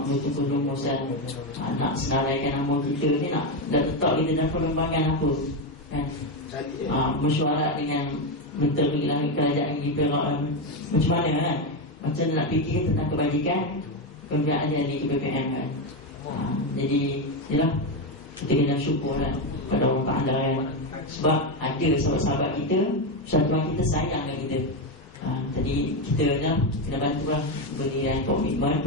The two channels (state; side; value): normal; both; correlation 0.09